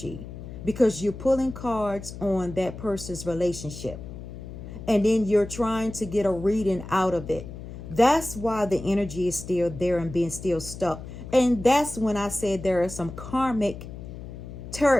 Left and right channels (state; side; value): noise; left; hum, 11 dB below the sound